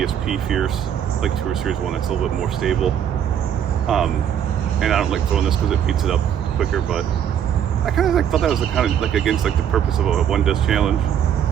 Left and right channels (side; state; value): left; quieter; 9.2 dB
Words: Fierce, like Tour Series 1 that's a little bit more stable. And I don't like throwing this because it beats it up quicker, but I kind of like thought that was kind of like against like the purpose of a one disc challenge.